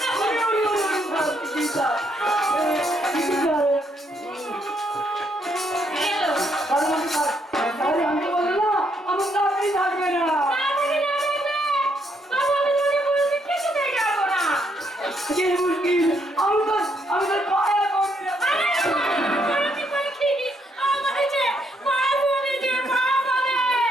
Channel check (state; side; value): normal; both; correlation 0.74